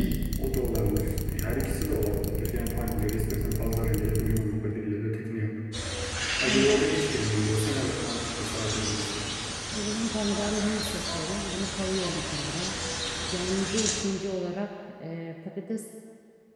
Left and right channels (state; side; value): identical; both; correlation 1.00